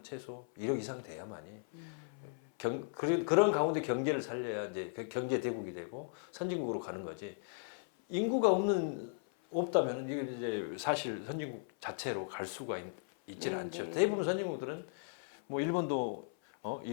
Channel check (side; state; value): right; silent; 53 dB below the other